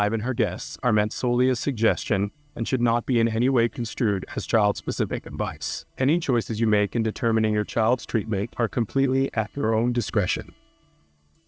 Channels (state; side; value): identical; both; correlation 1.00